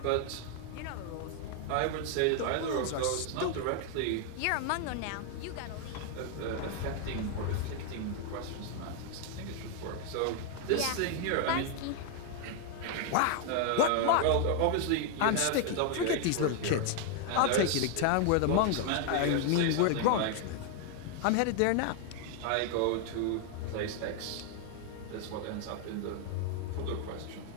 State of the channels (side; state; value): both; different; correlation 0.00